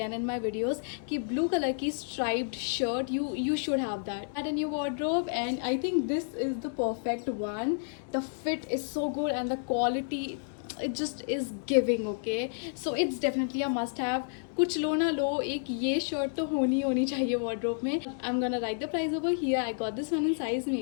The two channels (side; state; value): right; silent; digital silence